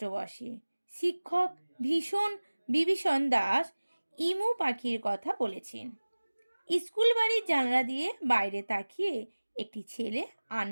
বসে। শিক্ষক বিভীষণ দাস ইমু পাখির কথা বলেছেন। স্কুল বাড়ির জানলা দিয়ে বাইরে তাকিয়ে একটি ছেলে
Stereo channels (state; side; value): inverted; both; correlation -1.00